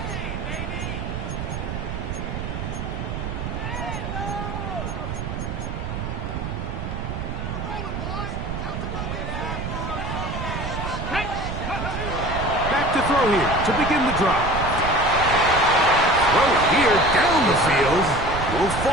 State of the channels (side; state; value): right; noise; rumble, 5 dB below the sound